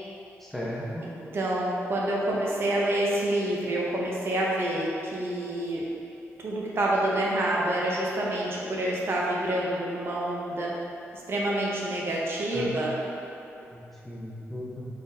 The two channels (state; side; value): normal; both; correlation 0.72